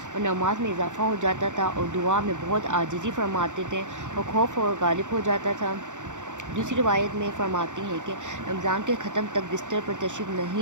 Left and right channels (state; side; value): late; left; 0.86 ms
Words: اور نماز میں اضافہ ہو جاتا تھا اور دعا میں بہت عاجزی فرماتے تھے اور خوف اور غالب ہو جاتا تھا۔ دوسری روایت میں فرماتی ہیں کہ رمضان کے ختم تک بستر پر تشریف